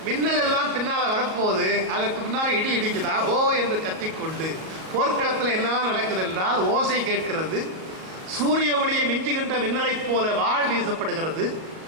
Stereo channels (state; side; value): late; left; 38 ms